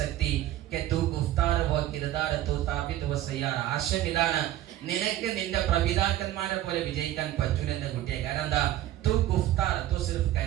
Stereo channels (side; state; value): left; quieter; 13.6 dB